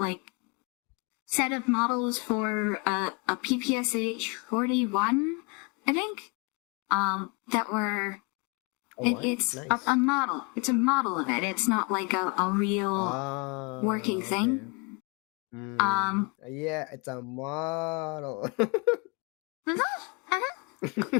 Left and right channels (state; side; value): quieter; right; 30.4 dB